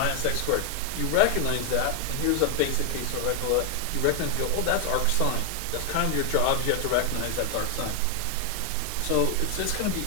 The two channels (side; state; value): both; different; correlation 0.00